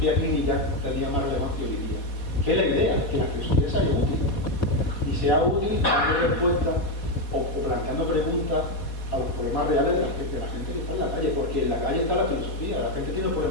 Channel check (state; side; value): late; right; 4.2 ms